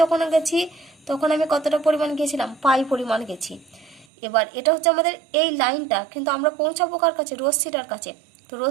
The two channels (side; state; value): left; drops out; at 4.0 s